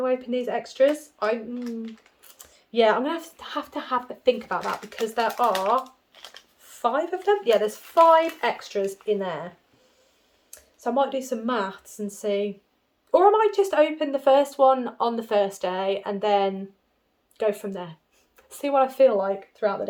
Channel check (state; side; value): identical; both; correlation 1.00